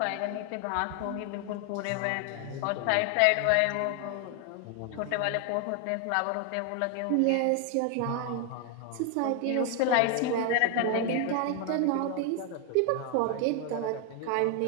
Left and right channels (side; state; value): both; different; correlation 0.00